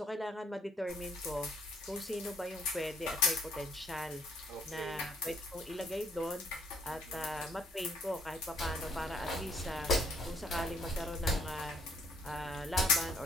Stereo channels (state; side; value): normal; both; correlation 0.66